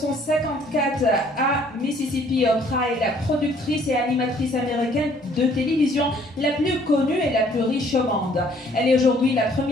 à Mississippi, Oprah est la productrice et animatrice américaine de télévision la plus connue et la plus riche au monde. Elle est aujourd'hui la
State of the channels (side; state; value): both; normal; correlation 0.60